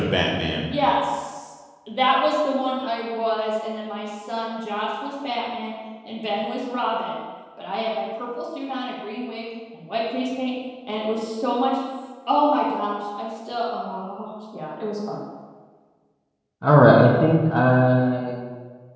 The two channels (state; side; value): identical; both; correlation 1.00